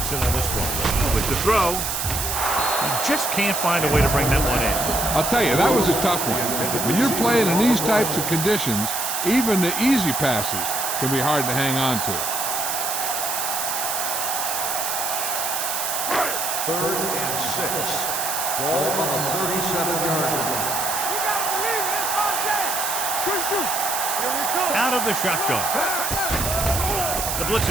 in on this one. With the throw, he just can't find a way to bring that one in. I'll tell you, that was a tough one. When you're playing in these types of conditions, even the easy passes can be hard to hang on to. Third and 6. Ball on the 37-yard line. You gotta believe it. It's our game. Good shoot. Here we go. Out of the shotgun. The blitz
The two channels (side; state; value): right; noise; hiss, 2 dB below the sound